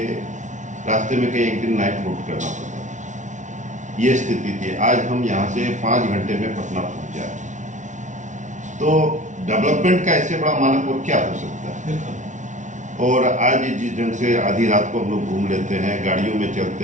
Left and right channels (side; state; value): left; late; 0.36 ms